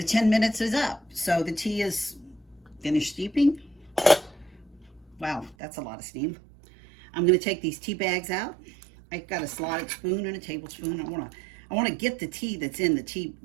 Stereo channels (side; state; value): left; drops out; at 5.6 s